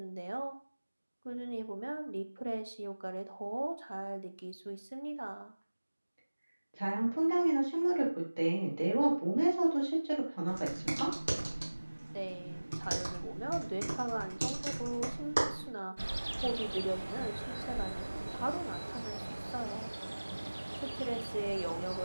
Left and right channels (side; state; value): both; inverted; correlation -1.00